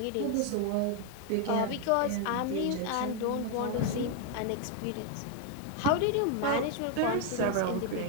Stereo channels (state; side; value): different; both; correlation 0.01